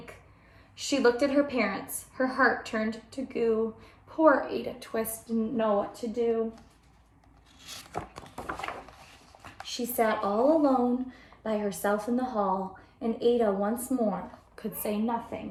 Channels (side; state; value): both; identical; correlation 1.00